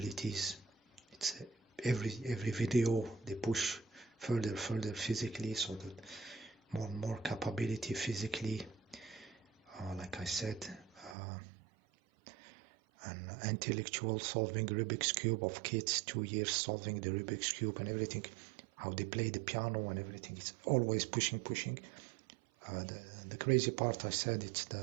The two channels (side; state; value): left; drops out; at 11.2 s